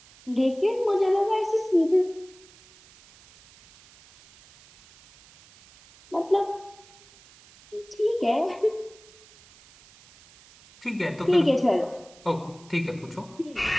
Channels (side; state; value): right; noise; hiss, 25 dB below the sound